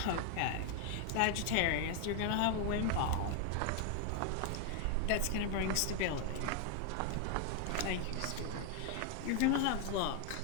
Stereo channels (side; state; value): both; different; correlation 0.00